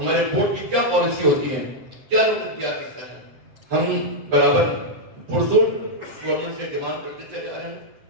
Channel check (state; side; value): late; left; 7.6 ms